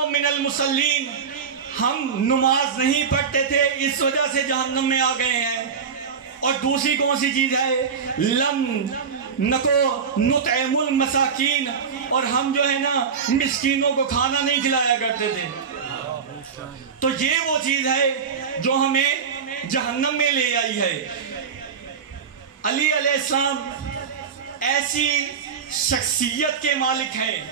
من المصلین، ہم نماز نہیں پڑھتے تھے اس وجہ سے جہنم میں آ گئے ہیں. اور دوسری کون سی چیز ہے؟ لم نکو نطعم المساکین، اور ہم جو ہے نا مسکینوں کو کھانا نہیں کھلایا کرتے تھے. تو یہ وہ چیز ہے جو ہمیں جہنم میں لے آئی ہے. علی علیہ السلام ایسی شخصیت کے مالک ہیں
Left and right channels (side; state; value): left; quieter; 6.3 dB